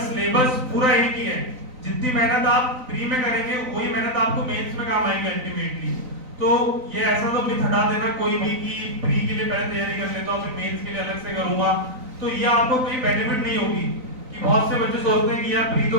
सिलेबस पूरा एक ही है। जितनी मेहनत आप प्री में करेंगे वही मेहनत आपको मेंस में काम आएगी अल्टीमेटली। तो ये ऐसा तो मिथ हटा देना कोई भी कि प्री के लिए पहले तैयारी कर लेता हूं फिर मेंस के लिए अलग से करूंगा, तो ये आपको कोई बेनिफिट नहीं होगी। कि बहुत से बच्चे सोचते हैं कि यार प्री तो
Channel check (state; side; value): late; left; 3.9 ms